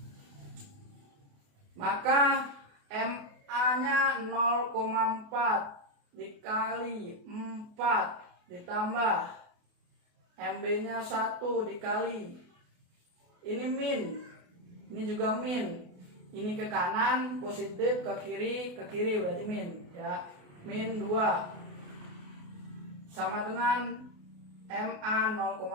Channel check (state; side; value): late; left; 28 ms